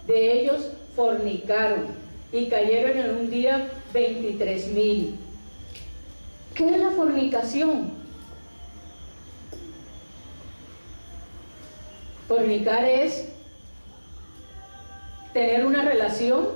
de ellos fornicaron, y cayeron en un día 23,000. ¿Qué es la fornicación? Fornicar es tener una relación,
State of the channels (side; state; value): both; inverted; correlation -1.00